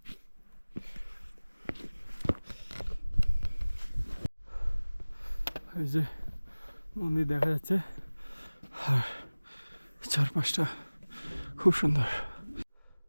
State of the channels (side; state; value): both; inverted; correlation -1.00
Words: এই যে মন্দির দেখা যাচ্ছে, আর চারপাশটা খুব সুন্দর।